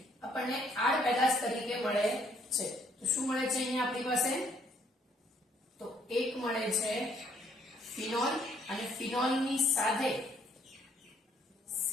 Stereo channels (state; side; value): normal; both; correlation 0.67